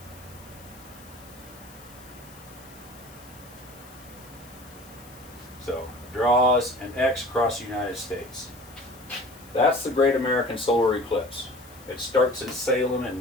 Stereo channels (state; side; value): noise; left; hiss, 22 dB below the sound